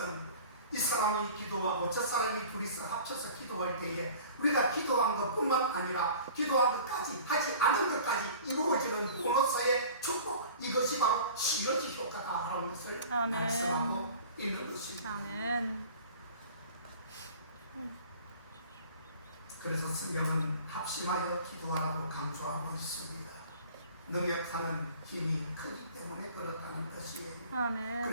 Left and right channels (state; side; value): inverted; both; correlation -0.44